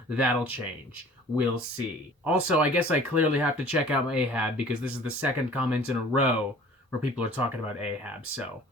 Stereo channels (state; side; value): normal; both; correlation 0.48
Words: that'll change. We'll see. Also, I guess I clearly have to check out Ahab because this is the second comment in a row where people are talking about Ahab. So,